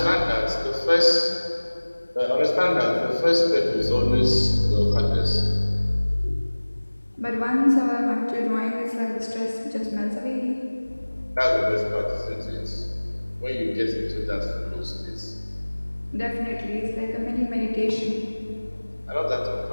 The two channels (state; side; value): inverted; both; correlation -1.00